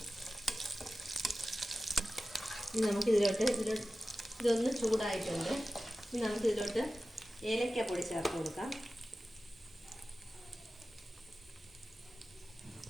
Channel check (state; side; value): normal; both; correlation 0.95